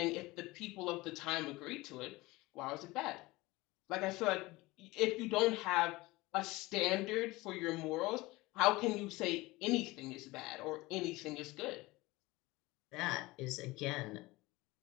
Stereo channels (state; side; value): quieter; right; 20.9 dB